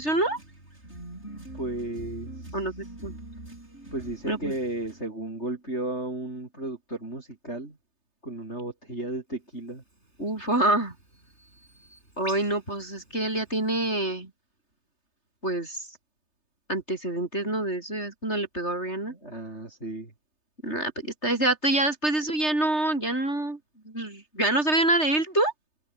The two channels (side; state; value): right; late; 3.3 ms